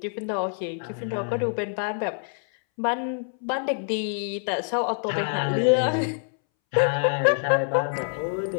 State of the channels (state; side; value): silent; right; 61 dB below the other